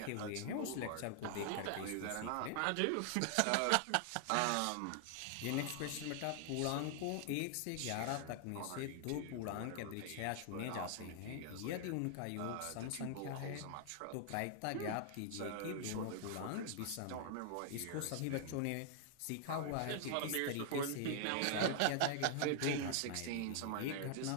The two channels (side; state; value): both; different; correlation 0.00